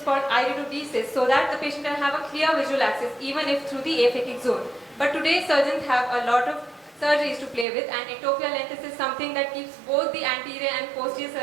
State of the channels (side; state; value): left; drops out; at 7.7 s